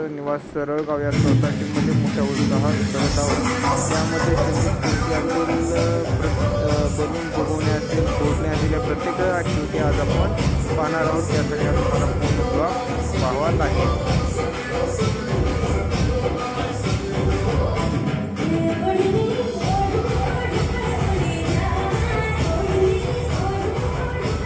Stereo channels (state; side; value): identical; both; correlation 1.00